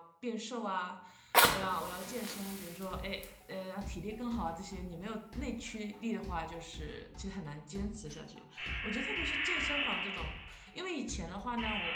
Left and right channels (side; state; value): both; identical; correlation 1.00